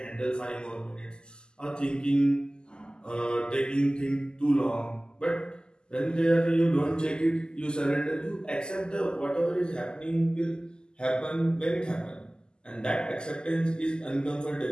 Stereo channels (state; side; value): late; right; 0.046 ms